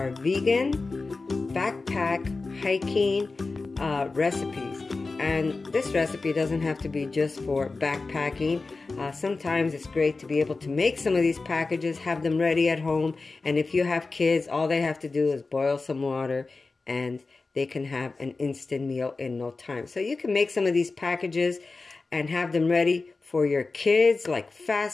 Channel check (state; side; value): quieter; right; 3.8 dB